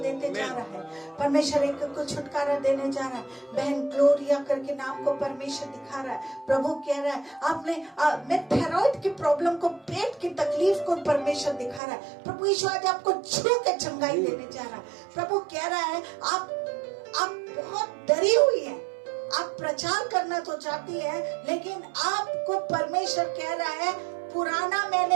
जा रहा है। परमेश्वर एक को छुटकारा देने जा रहा है। बहन ग्लोरिया करके नाम को परमेश्वर दिखा रहा है। प्रभु कह रहा है, आपने थायराइड की प्रॉब्लम को, पेट की तकलीफ को परमेश्वर दिखा रहा है। प्रभु यीशु आज आपको छू के चंगाई देने जा रहा है। प्रभु कह रहा है, आप बहुत डरी हुई है, आप प्रचार करना तो चाहती है, लेकिन आपको परमेश्वर कह रहा है, पुराना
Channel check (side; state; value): left; drops out; at 11.8 s